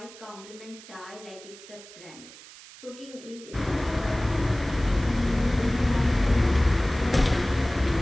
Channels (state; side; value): noise; right; hiss, 19 dB below the sound